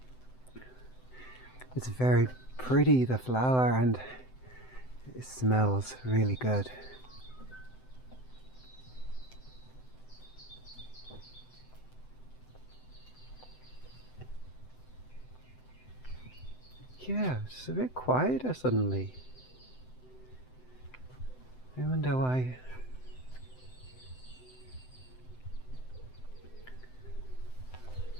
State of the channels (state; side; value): late; right; 7.8 ms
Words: It's very pretty, the flower, and it smells really good. Yeah, it's a bit quieter suddenly. I wonder why.